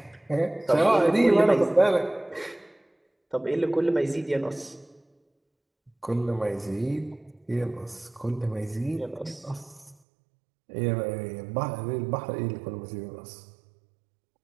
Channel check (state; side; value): drops out; left; at 10.0 s